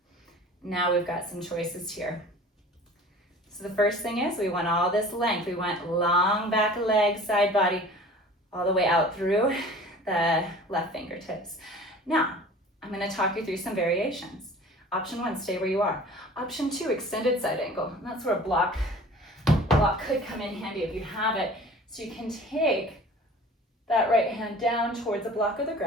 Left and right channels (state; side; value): normal; both; correlation 0.44